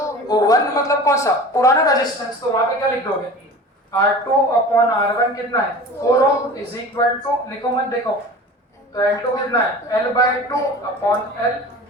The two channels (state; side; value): normal; both; correlation 0.38